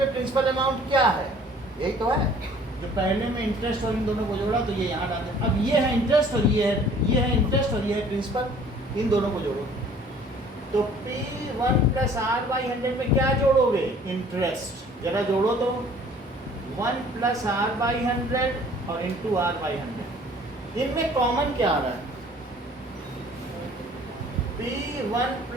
प्रिंसिपल अमाउंट क्या है, यही तो है, जो पहले में इंटरेस्ट और इन दोनों को जोड़ा तो ये यहाँ डाल दें। अब ये है इंटरेस्ट और ये है इंटरेस्ट और ये है प्रिंसिपल, इन दोनों को जोड़ो, तो P1 + R/100 में क्या जोड़ोगे, इंटरेस्ट, जरा जोड़ो तो 1 + R/100 और इंटू R/100, इनमें कॉमन क्या आ रहा है, P1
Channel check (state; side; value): normal; both; correlation 0.53